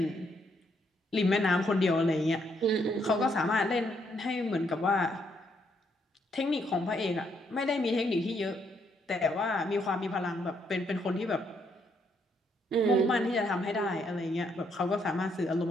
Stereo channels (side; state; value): both; normal; correlation 0.73